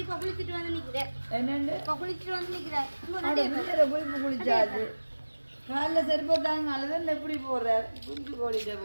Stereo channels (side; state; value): both; inverted; correlation -1.00